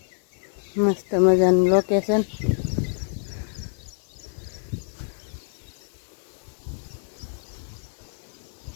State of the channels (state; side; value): silent; right; 57 dB below the other